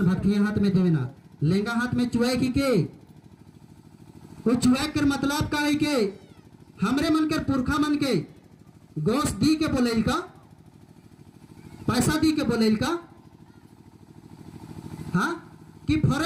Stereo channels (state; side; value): identical; both; correlation 1.00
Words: भक्ति हाथ में देवेना लेंगा हाथ में चुआई के वो चुआई कर मतलब का है के हमरे मन के पुरखा मन के गोश्त दी के बोलेल का, पैसा दी के बोलेल का, हाँ कि